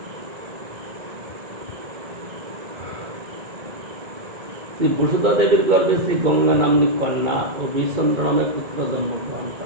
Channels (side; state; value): left; late; 2.3 ms